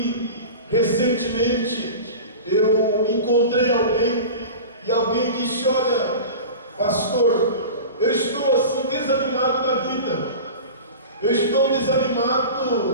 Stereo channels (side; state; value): both; inverted; correlation -0.33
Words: recentemente eu encontrei alguém e alguém disse: olha, pastor, eu estou assim desanimado na vida, eu estou